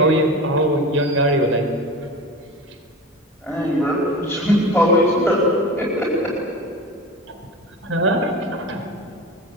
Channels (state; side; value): normal; both; correlation 0.31